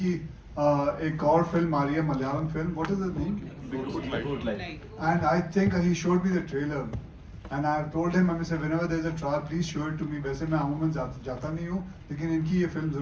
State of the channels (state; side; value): identical; both; correlation 1.00